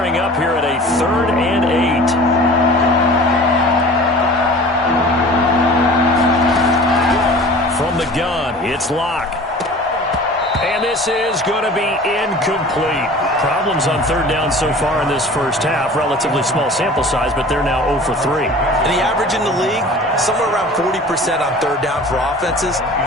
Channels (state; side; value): normal; both; correlation 0.42